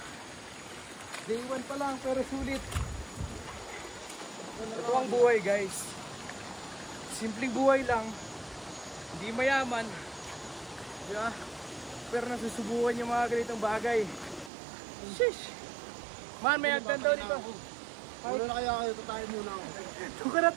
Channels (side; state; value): left; drops out; at 14.5 s